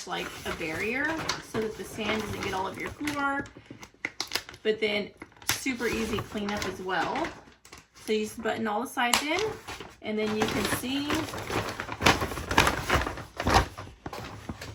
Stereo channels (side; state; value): both; identical; correlation 1.00